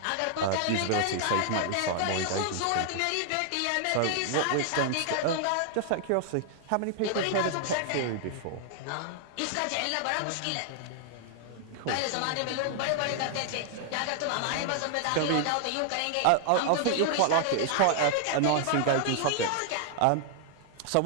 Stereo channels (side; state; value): both; different; correlation 0.00